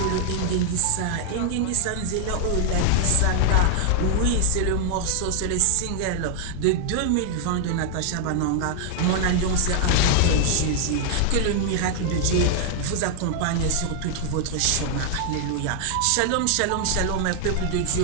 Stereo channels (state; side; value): different; both; correlation 0.00